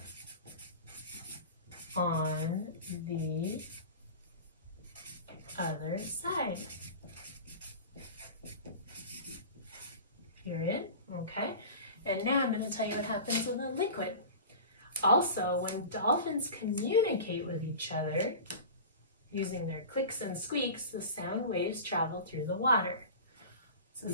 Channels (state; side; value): inverted; both; correlation -0.34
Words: on the other side. Period. Okay. And now I'm going to tell you what happens with a liquid. Also, when dolphins communicate with each other using their clicks and squeaks, the sound waves travel through the water.